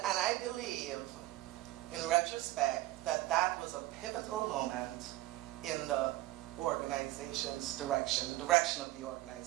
I believe, in retrospect, that was a pivotal moment in the organization's direction, the direction of the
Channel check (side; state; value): left; quieter; 17.1 dB